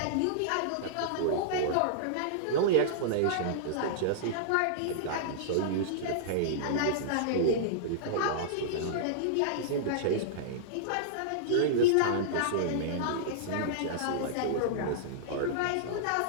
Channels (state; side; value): different; both; correlation -0.02